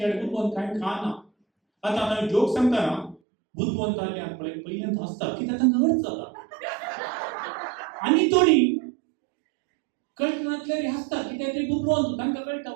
कडेन बुद्धवंत कांय खाना आतां हांव जोक सांगता ना बुद्धवंत आले आनी पळय पयल्यान हसता कित्याक तांकां अर्थ जाता आनी थोडी कळनातल्यार हसता कित्याक ते बुद्धवंत तांकां कळटा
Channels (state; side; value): drops out; left; at 3.2 s